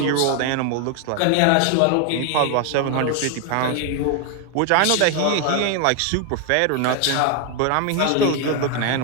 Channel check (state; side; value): different; both; correlation 0.01